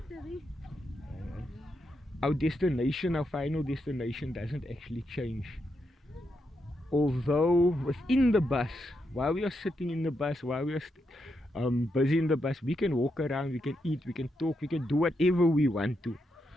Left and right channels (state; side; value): normal; both; correlation 0.82